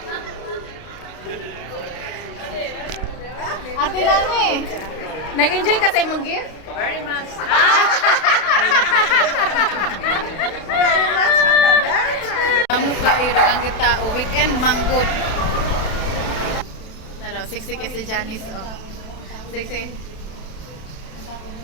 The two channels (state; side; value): late; right; 32 ms